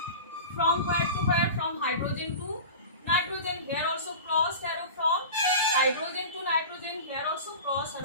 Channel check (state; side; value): inverted; both; correlation -0.33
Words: from where to where? From hydrogen to nitrogen. Here also cross arrow from hydrogen to nitrogen. Here also cross